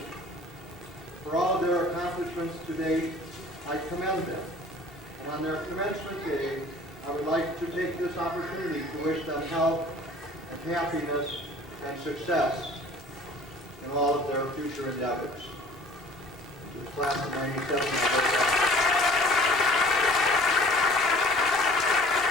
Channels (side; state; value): both; normal; correlation 0.48